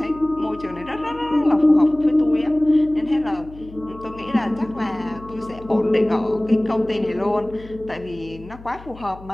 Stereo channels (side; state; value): left; noise; hum, 19 dB below the sound